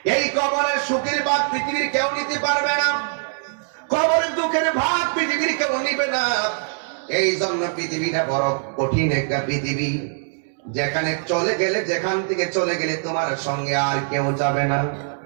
এই কবরের সুখের ভাগ পৃথিবীর কেউ নিতে পারবে না। কবরের দুঃখের ভাগ পৃথিবীর কেউ নিবে না। এই জন্য পৃথিবীটা বড় কঠিন একটা পৃথিবী, যেখানে চলে গেলে, যেখান থেকে চলে গেলে তোমার সঙ্গে আর কেউ যাবে না।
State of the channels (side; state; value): left; silent; digital silence